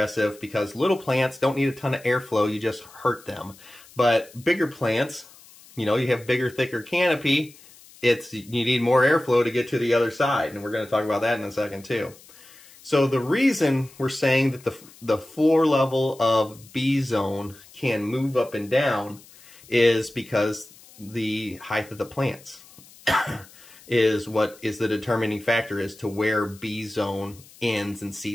because little plants don't need a ton of airflow. You just hurt them. But bigger plants, you know, you have bigger, thicker canopy. You need more airflow to get to the other side. And we're going to talk about that in a second too. So the reason we're saying that the floor level of B zone can move up and down is because the height of the plants is what is the determining factor as to where B zone ends and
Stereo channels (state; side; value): noise; left; hiss, 23 dB below the sound